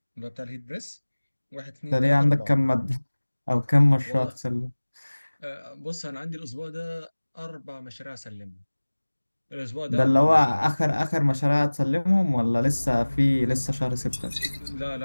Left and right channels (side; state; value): both; inverted; correlation -1.00